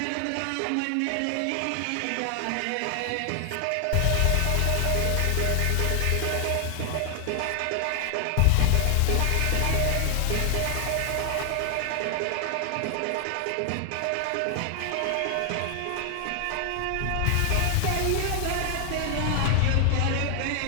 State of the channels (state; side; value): different; both; correlation 0.00